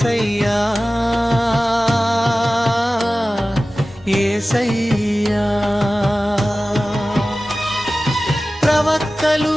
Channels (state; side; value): normal; both; correlation 0.96